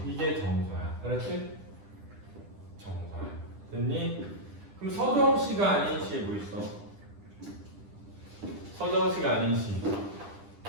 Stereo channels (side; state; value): left; late; 10 ms